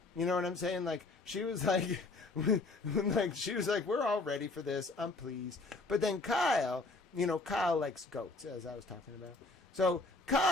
You know what I'm saying? Like, she was like, we're all ready for this. I'm pleased. But then Kyle, you know, Kyle likes goats, as I was talking about. So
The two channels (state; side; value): quieter; right; 3.3 dB